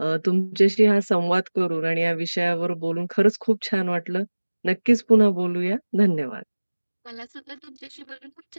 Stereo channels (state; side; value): inverted; both; correlation -1.00